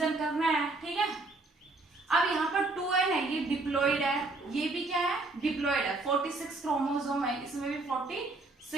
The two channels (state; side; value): quieter; left; 3.1 dB